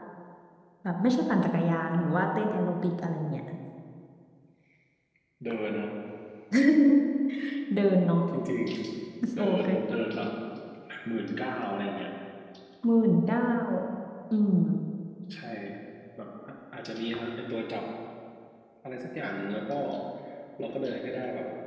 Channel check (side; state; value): both; identical; correlation 1.00